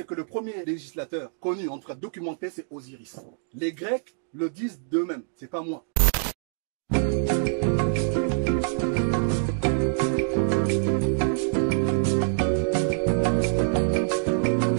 que le premier législateur connu, en tout cas documenté, c'est Osiris. Les Grecs le disent d'eux-mêmes, c'est pas moi.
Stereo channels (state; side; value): silent; left; digital silence